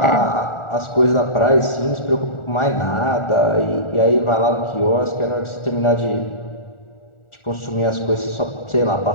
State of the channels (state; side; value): late; right; 1.4 ms